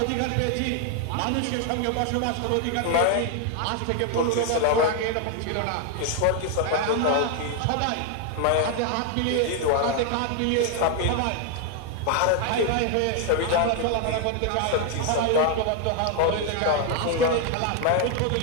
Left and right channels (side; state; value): both; different; correlation 0.00